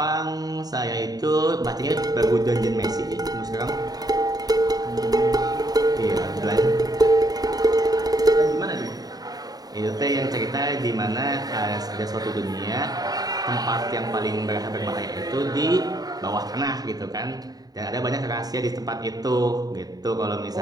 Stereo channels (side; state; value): left; late; 0.18 ms